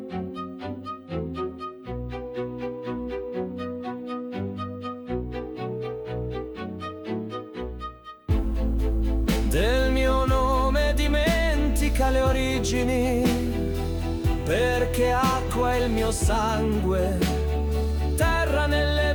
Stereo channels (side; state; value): both; identical; correlation 1.00